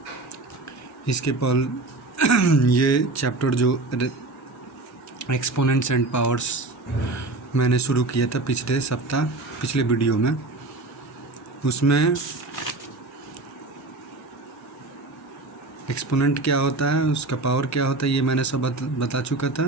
इसके पल ये चैप्टर जो एक्सपोनेंट्स एंड पावर्स मैंने शुरू किया था पिछले वीडियो में, उसमें एक्सपोनेंट क्या होता है, उसका पावर क्या होता है, ये मैंने सब बता चुका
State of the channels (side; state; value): left; quieter; 3.1 dB